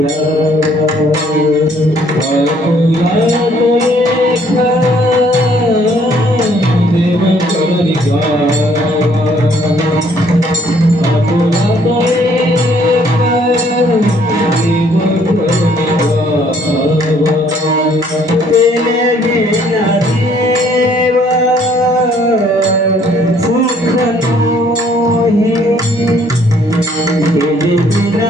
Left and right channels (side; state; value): both; normal; correlation 0.63